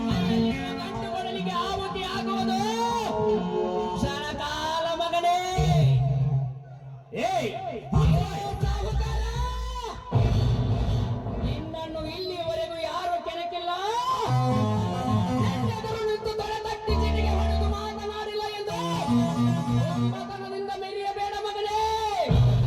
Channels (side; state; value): both; identical; correlation 1.00